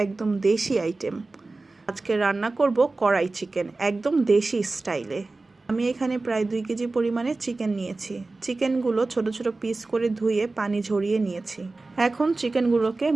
একদম দেশি আইটেম। আজকে রান্না করব কড়াই চিকেন, একদম দেশি স্টাইলে। আমি এখানে প্রায় 2 কেজি পরিমাণে চিকেন নিয়েছি। চিকেনগুলো ছোট ছোট পিস করে ধুয়ে পানি ঝরিয়ে নিয়েছি। এখন চিকেনগুলোকে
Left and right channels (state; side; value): quieter; left; 3.4 dB